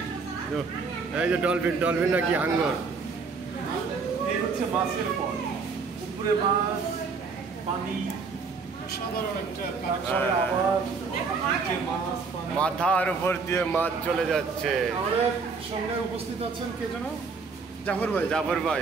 এই যে ডলফিন, ডলফিন নাকি হাঙ্গর, এই হচ্ছে মাছের পর, উপরে মাছ, পানি, সাধারণ একটা, তারপরে আবার নিচে মাছ, পানি। মাথার উপর দিয়ে মাছ চলে যাচ্ছে। আমাদের সঙ্গে উপস্থিত আছেন কে যেন? জাফর ভাই। জাফর ভাই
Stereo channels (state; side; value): quieter; left; 4.8 dB